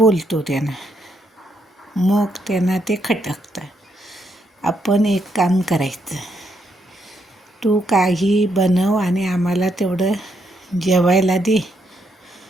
त्यांना, मग त्यांना ते खटकतं. आपण एक काम करायचं, तू काही बनव आणि आम्हाला तेवढं जेवायला दे,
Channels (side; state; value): both; normal; correlation 0.77